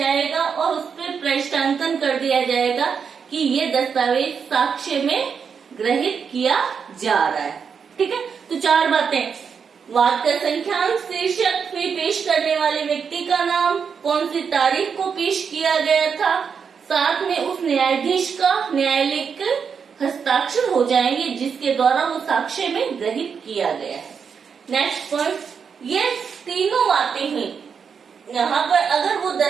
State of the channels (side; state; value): left; quieter; 6.4 dB